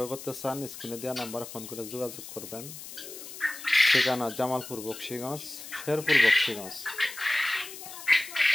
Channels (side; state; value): left; noise; hiss, 12 dB below the sound